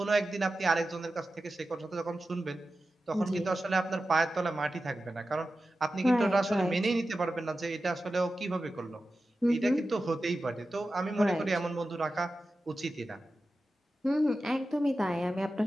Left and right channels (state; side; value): normal; both; correlation 0.93